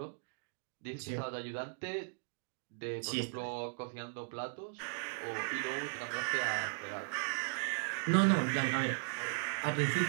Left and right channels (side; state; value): left; silent; digital silence